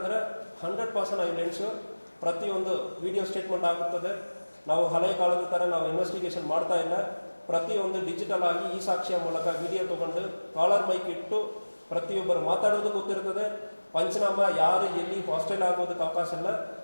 100% ಐ ವಿಲ್ ಎನ್ಶೂರ್ ಪ್ರತಿಯೊಂದು ವಿಡಿಯೋ ಸ್ಟೇಟ್ಮೆಂಟ್ ಆಗುತ್ತದೆ. ನಾವು ಹಳೆಯ ಕಾಲದ ಥರ ನಾವು ಇನ್ವೆಸ್ಟಿಗೇಷನ್ ಮಾಡ್ತಾ ಇಲ್ಲ. ಪ್ರತಿಯೊಂದು ಡಿಜಿಟಲ್ ಆಗಿ ಈ ಸಾಕ್ಷಿಯ ಮೂಲಕ ವಿಡಿಯೋ ತೊಗೊಂಡು ಕಾಲರ್ ಮೈಕ್ ಇಟ್ಟು ಪ್ರತಿಯೊಬ್ಬರು ಮಾತಾಡೋದು ಗೊತ್ತಿರ್ತದೆ. ಪಂಚನಾಮ ಯಾರು ಎಲ್ಲಿ ಹಾಸ್ಟೆಲ್ ಆಗೋದಕ್ಕೆ ಅವಕಾಶ ಇಲ್ಲ.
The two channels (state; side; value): inverted; both; correlation -1.00